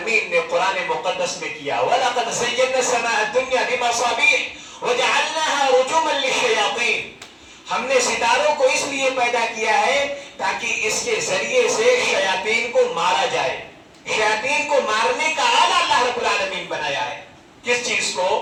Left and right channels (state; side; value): identical; both; correlation 1.00